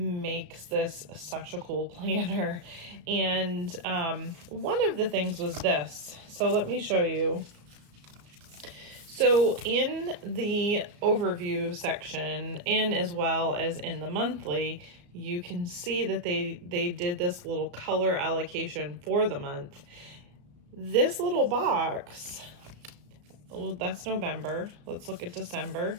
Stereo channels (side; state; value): left; late; 34 ms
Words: this such a cool planner. And one of the things was this. So let me show you. So in the overview section, and as well as in the monthly, you can see that they did this little color allocation for the month. This little box, well, that's November. Let's look at December.